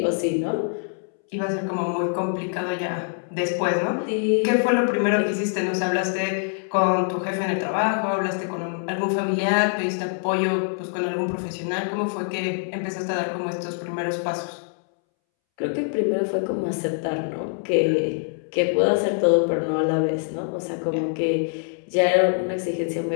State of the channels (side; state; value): right; silent; 62 dB below the other